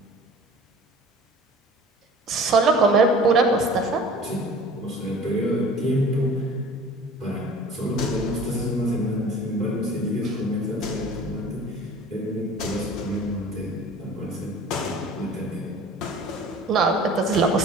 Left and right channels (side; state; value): both; normal; correlation 0.44